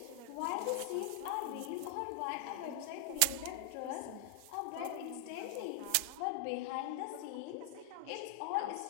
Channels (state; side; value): different; both; correlation 0.00